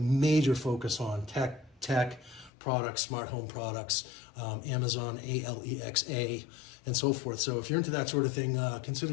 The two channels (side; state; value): right; drops out; at 2.5 s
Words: focus on tech products, smart home products, Amazon, Alexa, and so forth. So if you're into that sort of thing,